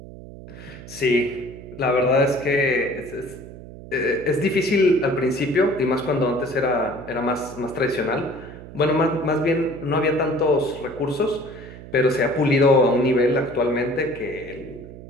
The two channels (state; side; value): noise; right; hum, 15 dB below the sound